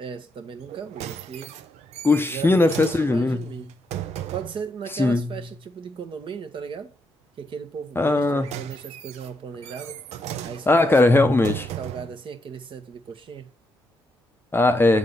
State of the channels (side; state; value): both; normal; correlation 0.81